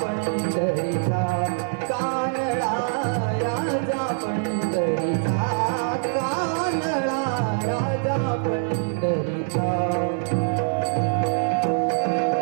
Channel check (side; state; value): left; silent; digital silence